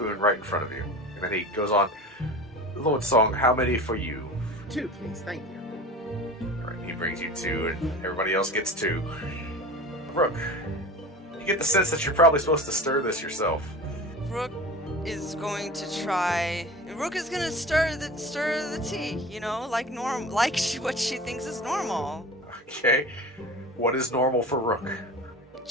right in front of you. And then he goes on, Lord Song, how many for you? 2, please, thank you. Alright, he brings you 2, and everybody else gets 2. Rook, you get the sense that you're probably supposed to stir this yourself. Rook is going to try... Rook is going to stir the tea, like what she thinks is normal. Okay, what is normal for Rook?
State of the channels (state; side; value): normal; both; correlation 0.34